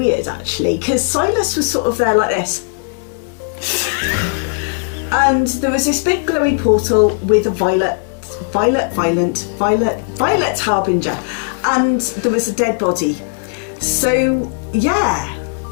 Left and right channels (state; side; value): silent; right; digital silence